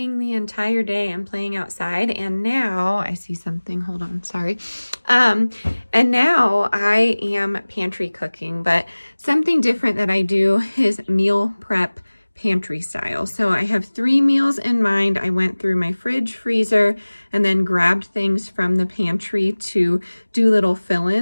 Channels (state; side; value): inverted; both; correlation -1.00